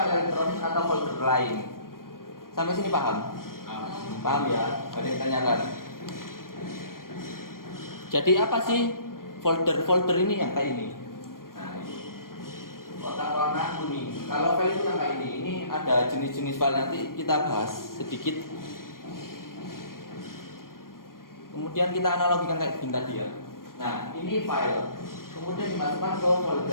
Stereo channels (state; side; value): late; right; 0.91 ms